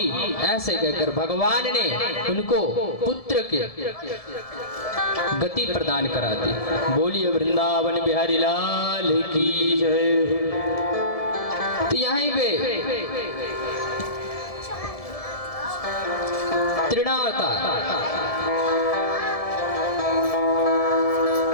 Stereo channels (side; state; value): right; late; 1.7 ms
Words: ऐसे कहकर भगवान ने उनको पुत्र के गति प्रदान करा दी। बोलिए वृंदावन बिहारी लाल की जय। तो यहीं पे तृणावतार,